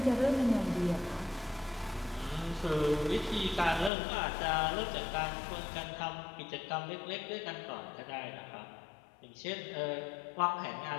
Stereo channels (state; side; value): drops out; right; at 3.9 s